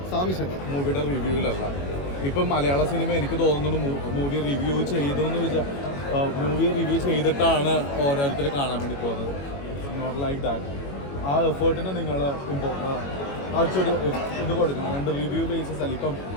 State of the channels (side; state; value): right; late; 21 ms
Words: സാമിഷൻ മൂവിയുടെ റിവ്യൂവിലല്ല. ഇപ്പം മലയാള സിനിമ എനിക്ക് തോന്നുന്നു മൂവി റിവ്യൂ ചെയ്തിട്ടാണ് ഓരോരുത്തർ കാണാൻ വേണ്ടി പോകുന്നത്. Not like that. ആ എഫേർട്ടിന് നിങ്ങൾ ആഴ്ചയൊരു ഇത് കൊടുക്കണം. രണ്ട് റിവ്യൂ ബേസിസ് അല്ല. ഇപ്പം